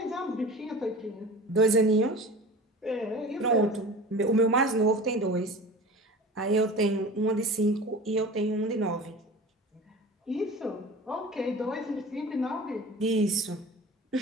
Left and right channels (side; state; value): both; normal; correlation 0.37